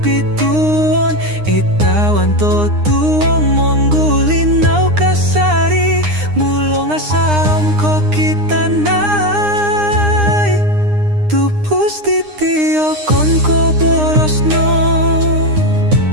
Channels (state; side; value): late; left; 9.8 ms